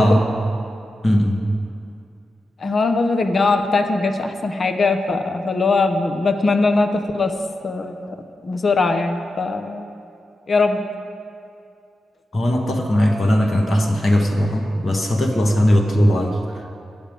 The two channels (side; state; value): both; normal; correlation 0.91